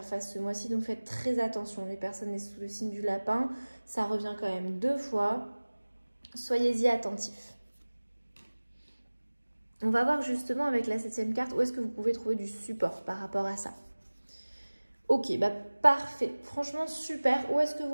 face ce mois-ci, donc faites très attention. Les personnes sous le signe du lapin, ça revient quand même 2 fois. Soyez-y attentifs. On va voir justement avec la 7e carte où est-ce que vous pouvez trouver du support par rapport à ça. Ok, parfait. Franchement, super. Où est-ce que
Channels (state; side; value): inverted; both; correlation -1.00